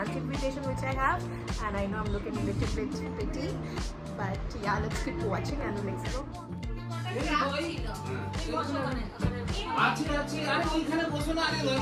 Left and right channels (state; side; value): identical; both; correlation 1.00